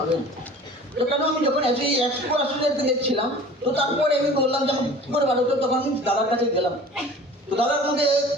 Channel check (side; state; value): both; normal; correlation 0.43